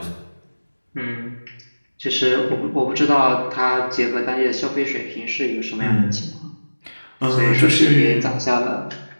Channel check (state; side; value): inverted; both; correlation -1.00